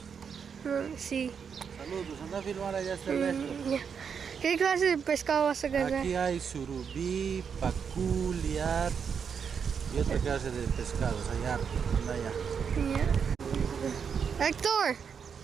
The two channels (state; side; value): quieter; left; 6.7 dB